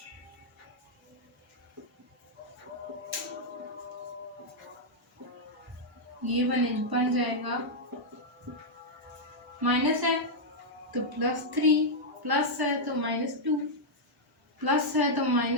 ये बन जाएगा, माइनस है तो +3, प्लस है तो -2, प्लस है तो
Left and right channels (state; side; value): normal; both; correlation -0.04